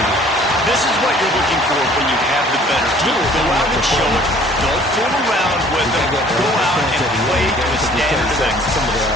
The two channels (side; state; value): both; normal; correlation 0.54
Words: This is what you're looking for when you have the better team. Go out and show it. Don't fool around with it. Go out and play to a standard of